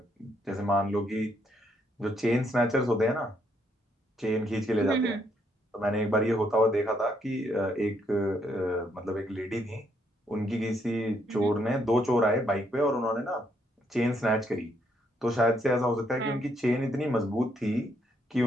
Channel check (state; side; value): normal; both; correlation 0.73